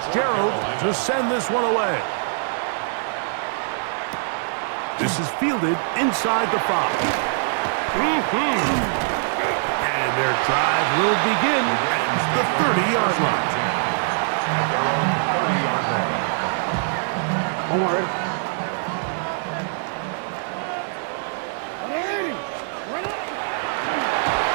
to send this one away. This is fielded inside the 5. And their drive will begin at the 30-yard line. One more, ready?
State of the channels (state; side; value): silent; left; digital silence